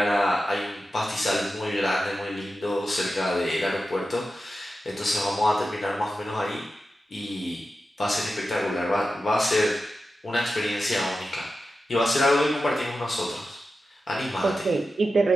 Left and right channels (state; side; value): normal; both; correlation 0.92